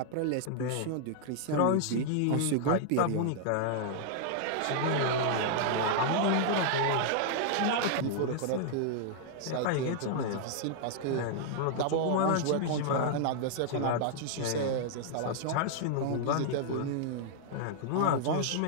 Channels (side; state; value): both; different; correlation -0.01